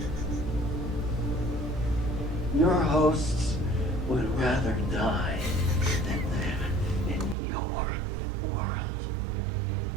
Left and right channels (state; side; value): drops out; left; at 7.4 s